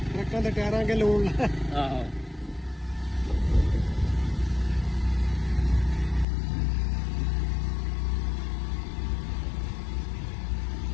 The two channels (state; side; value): drops out; right; at 6.2 s